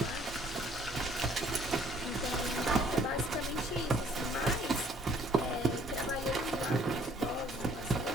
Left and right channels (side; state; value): both; normal; correlation 0.60